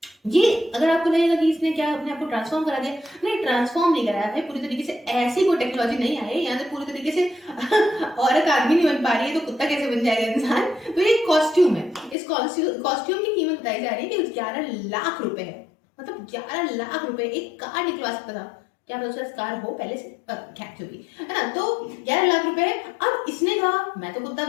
ये अगर आपको लगेगा कि इसने क्या अपने आप को ट्रांसफॉर्म करा दिया, नहीं ट्रांसफॉर्म नहीं कराया भाई, पूरी तरीके से ऐसी कोई टेक्नोलॉजी नहीं आई यहाँ से पूरी तरीके से औरत आदमी नहीं बन पा रही है तो कुत्ता कैसे बन जाएगा इंसान। तो ये कॉस्ट्यूम है, इस कॉस्ट्यूम की कीमत बताई जा रही है कि 11 लाख रुपए है। मतलब 11 लाख रुपए एक कार निकलवा सकता था, क्या पता उसका कार हो पहले से, खैर जो भी है ना। तो 11 लाख रुपए है। अब इसने कहा मैं तो कुत्ता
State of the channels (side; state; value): right; drops out; at 12.2 s